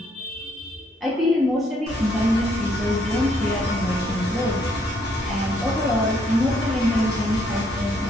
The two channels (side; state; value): both; normal; correlation 0.70